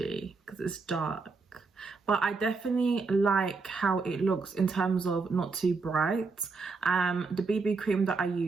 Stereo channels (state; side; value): quieter; left; 4.3 dB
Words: because it's dark, but I definitely like how it looks in terms of not too bright. The BB cream that I